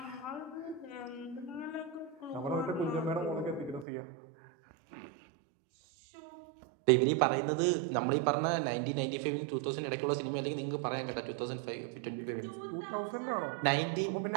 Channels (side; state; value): left; drops out; at 3.9 s